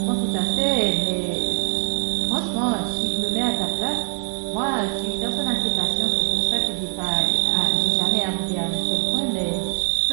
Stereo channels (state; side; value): silent; left; digital silence